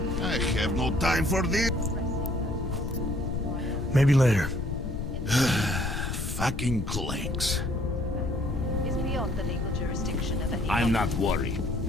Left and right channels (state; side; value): noise; left; rumble, 3 dB below the sound